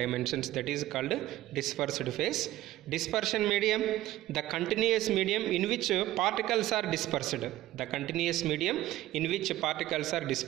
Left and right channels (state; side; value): quieter; left; 15.3 dB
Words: that is called dispersed phase. Dispersion medium, the continuous medium in which particles are dispersed. The continuous medium in which particles are